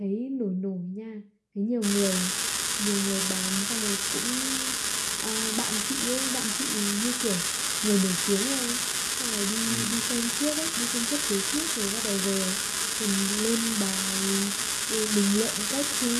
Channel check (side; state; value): both; identical; correlation 1.00